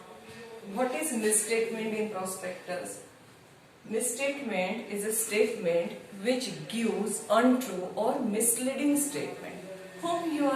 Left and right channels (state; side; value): identical; both; correlation 1.00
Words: What is misstatement in prospectus? Misstatement is a statement which gives untrue or misleading statement. Whom you